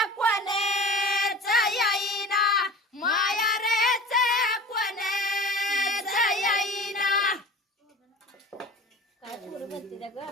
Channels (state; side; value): normal; both; correlation 0.38